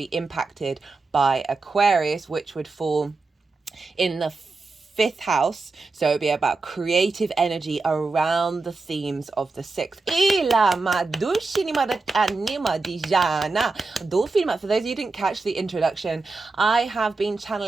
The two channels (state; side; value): quieter; left; 3.8 dB